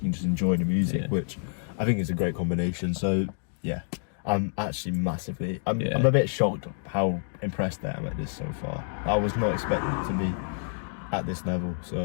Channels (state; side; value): silent; right; digital silence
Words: just enjoy the music, which I think is a great combination. So yeah, I'm actually massively. I'm a bit shocked how impressed I am at this so far. I was not expecting it to be at this level,